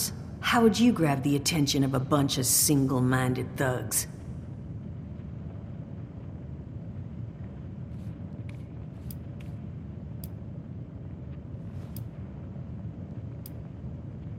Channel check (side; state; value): both; identical; correlation 1.00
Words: How would you grab the attention of a bunch of single-minded thugs?